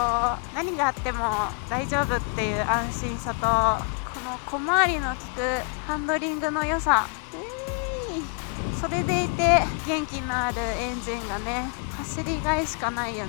何があっても大丈夫っていう安心さと、この小回りの利くハンドリングの良さ、それでいて元気のあるエンジンがね、走りがいしかないよ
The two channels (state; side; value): quieter; right; 38.8 dB